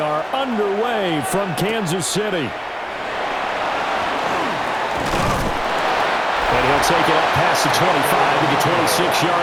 underway from Kansas City. And he'll take it up past the 25 to the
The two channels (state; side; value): identical; both; correlation 1.00